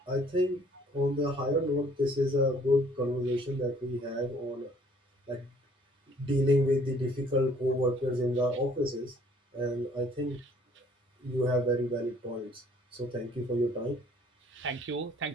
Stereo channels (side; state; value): both; normal; correlation 0.59